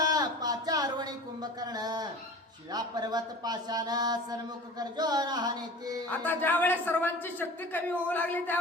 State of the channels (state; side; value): normal; both; correlation 0.39